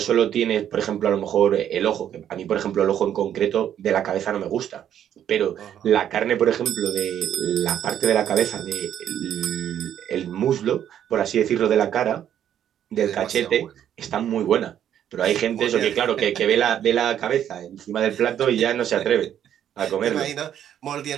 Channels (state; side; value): quieter; left; 10.1 dB